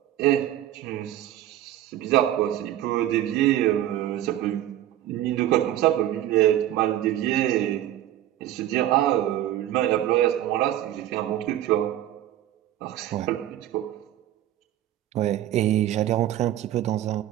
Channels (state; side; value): quieter; left; 12.9 dB